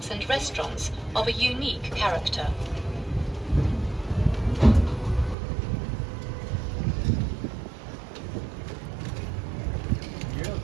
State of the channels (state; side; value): drops out; left; at 5.4 s